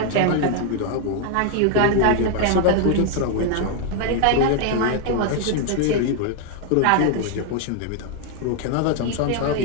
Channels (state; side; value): different; both; correlation 0.00